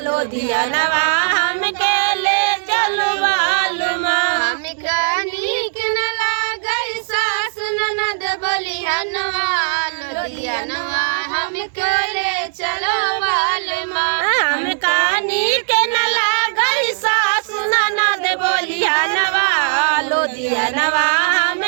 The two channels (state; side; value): silent; left; 67 dB below the other